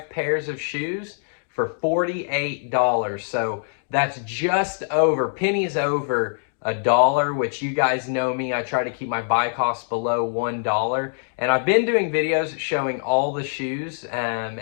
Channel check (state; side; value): silent; right; digital silence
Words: pairs of shoes for $48. So that's just over, pennies over $1, which you guys know me. I try to keep my buy costs below $1. And I've been doing videos showing all the shoes